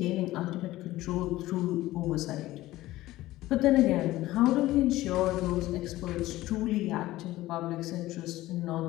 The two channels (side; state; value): right; quieter; 16.6 dB